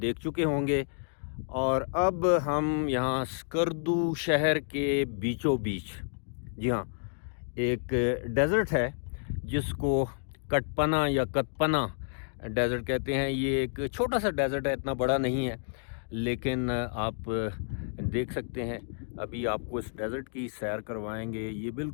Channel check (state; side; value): silent; right; digital silence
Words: चुके होंगे। और अब हम यहाँ स्कर्दू शहर के बीचों बीच, जी हाँ, एक डेज़र्ट है जिसको कटपना या कतपना डेज़र्ट कहते हैं। ये एक छोटा सा डेज़र्ट है, इतना बड़ा नहीं है, लेकिन आप देख सकते हैं। अभी आपको इस डेज़र्ट की सैर करवाएंगे। ये